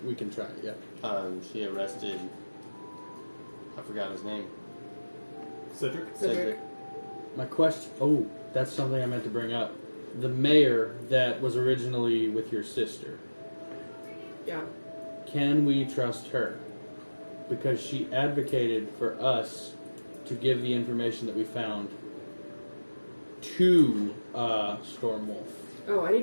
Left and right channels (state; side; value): inverted; both; correlation -1.00